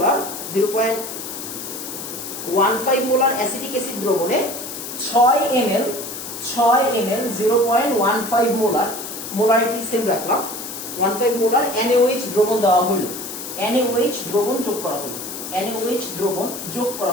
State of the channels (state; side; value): noise; left; hiss, 8 dB below the sound